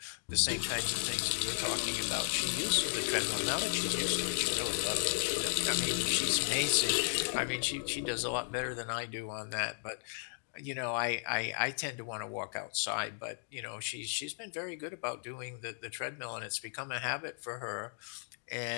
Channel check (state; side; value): silent; right; digital silence